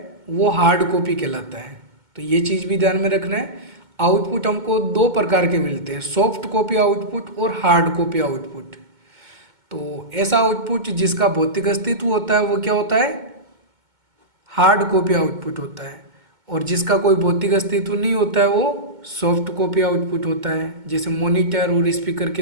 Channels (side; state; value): left; late; 2.2 ms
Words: वो हार्ड कॉपी कहलाता है। तो ये चीज़ भी ध्यान में रखना है, आउटपुट हमको दो प्रकार के मिलते हैं, सॉफ्ट कॉपी आउटपुट और हार्ड कॉपी आउटपुट। तो ऐसा आउटपुट जिसका भौतिक अस्तित्व होता है वो क्या होता है? हार्ड कॉपी आउटपुट होता है, और जिसका कोई भौतिक अस्तित्व नहीं होता है वो सॉफ्ट कॉपी आउटपुट होता है, जैसे मॉनिटर और स्पीकर के